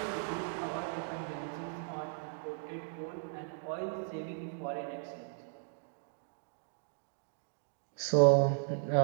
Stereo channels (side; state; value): left; silent; digital silence